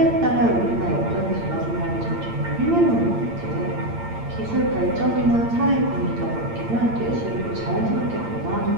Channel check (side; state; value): left; late; 8.8 ms